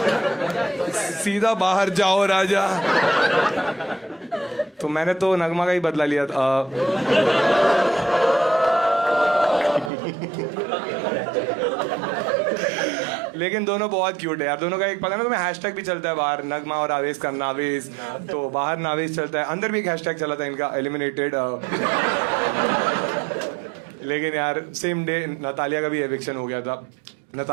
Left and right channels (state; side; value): drops out; left; at 9.9 s